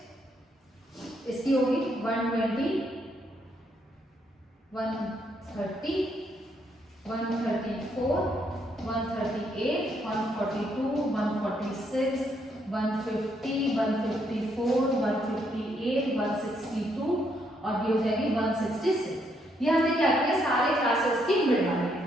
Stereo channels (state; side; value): normal; both; correlation 0.74